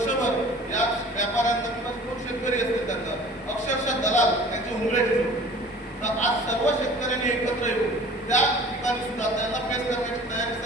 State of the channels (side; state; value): both; normal; correlation 0.46